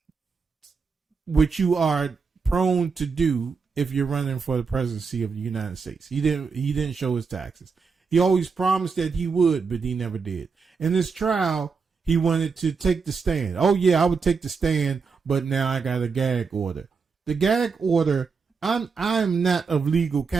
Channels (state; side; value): quieter; left; 5.2 dB